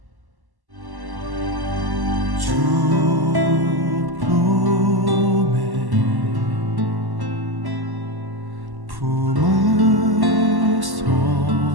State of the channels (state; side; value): late; left; 1.1 ms